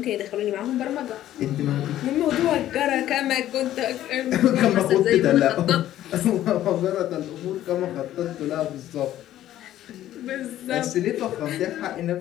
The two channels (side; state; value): right; quieter; 12.9 dB